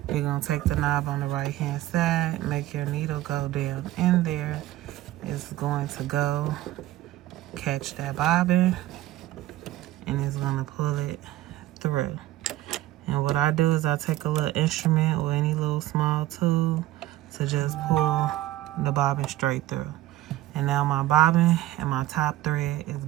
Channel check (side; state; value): left; quieter; 15.4 dB